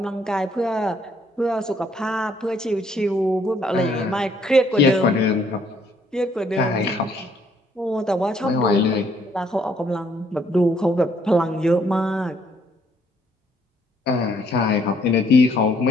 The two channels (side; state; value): both; normal; correlation 0.67